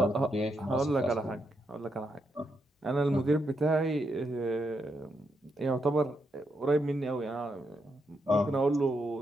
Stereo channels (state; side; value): normal; both; correlation 0.81